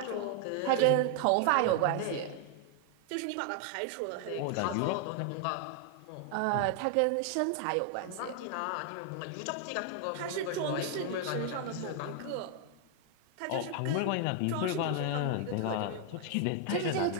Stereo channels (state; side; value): different; both; correlation 0.00